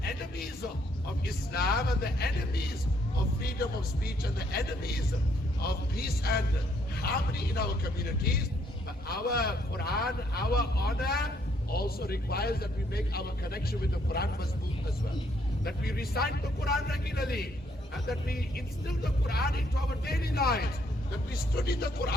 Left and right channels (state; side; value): normal; both; correlation 0.69